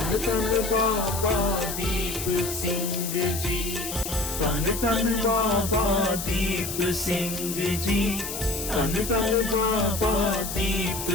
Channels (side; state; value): left; noise; hiss, 6 dB below the sound